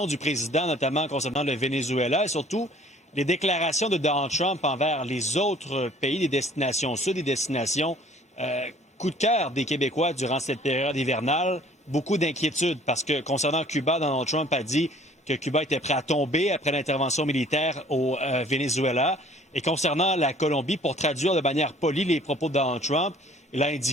du président, notamment concernant le Venezuela et surtout les déclarations de Donald Trump envers les autres pays, des destinations sud, des destinations coup de cœur des Québécois durant cette période hivernale, beaucoup d'inquiétudes parce que concernant Cuba, Donald Trump a dit que Cuba était prêt à tomber après l'intervention militaire au Venezuela. Et concernant la Colombie, pour traduire de manière polie les propos de Donald Trump, il a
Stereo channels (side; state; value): both; normal; correlation 0.54